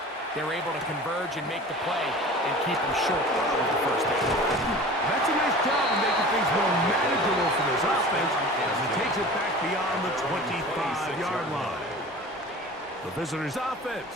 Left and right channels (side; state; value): both; normal; correlation 0.39